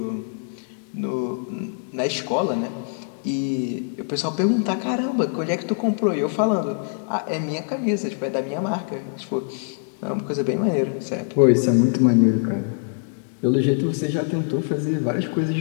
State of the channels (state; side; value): silent; right; digital silence